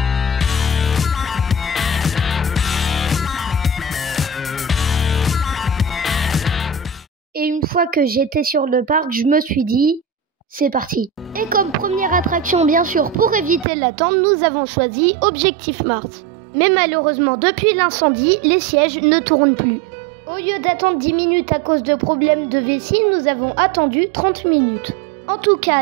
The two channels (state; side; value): drops out; left; at 13.7 s